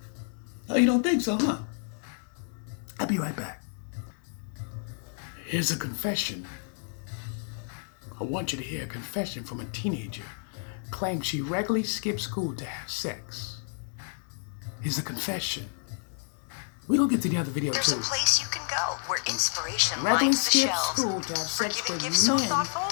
Oh, you don't think so, huh? I'll be right back. Here's a confession. I want you to hear a confession from a teenager. Claims she regularly skips school to have sex. Here's a confession. We're going to get to the other video There's too. a place you can go where inspiration Regularly lines the skip shelves. school to have For sex giving with gifts so men thoughtful,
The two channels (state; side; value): silent; right; 58 dB below the other